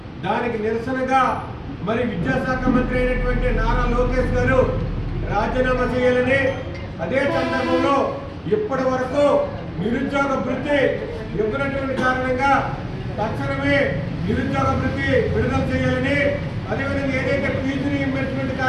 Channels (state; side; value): identical; both; correlation 1.00